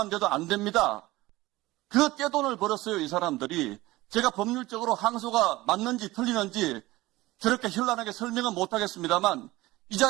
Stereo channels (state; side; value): quieter; left; 18.9 dB